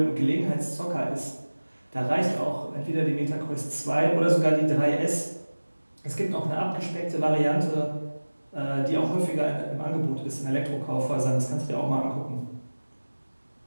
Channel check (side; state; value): both; inverted; correlation -1.00